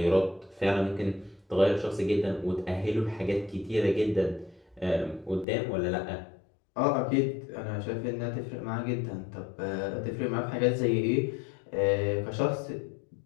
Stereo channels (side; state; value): right; drops out; at 5.5 s